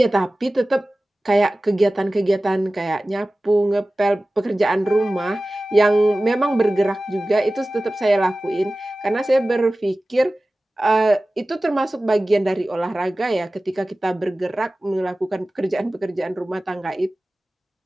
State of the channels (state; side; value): normal; both; correlation 0.97